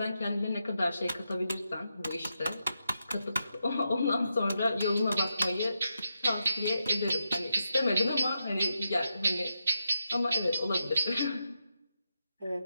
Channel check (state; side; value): inverted; both; correlation -0.85